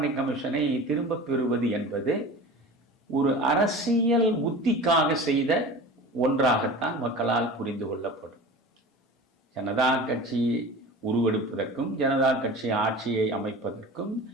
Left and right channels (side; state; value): both; normal; correlation 0.36